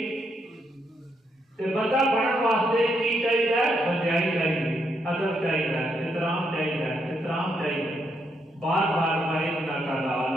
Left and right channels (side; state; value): both; normal; correlation 0.77